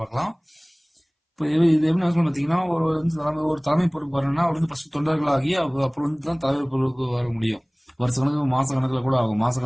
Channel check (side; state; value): both; identical; correlation 1.00